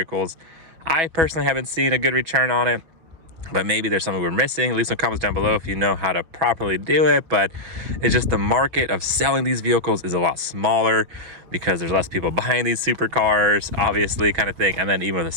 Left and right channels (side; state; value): left; late; 6.1 ms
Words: I personally haven't seen a good return on it, but maybe there's something we're missing. Leave some comments down below if you know how to properly do it. But it's just the market of selling these vehicles is a lot smaller because there's less people buying these supercars, obviously, kind of thing. And then even with the